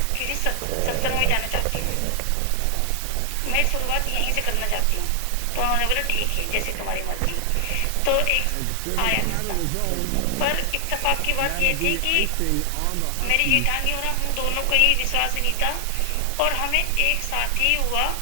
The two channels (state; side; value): different; both; correlation 0.00